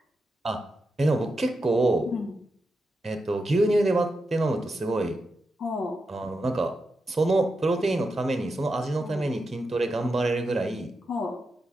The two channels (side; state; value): both; normal; correlation 0.87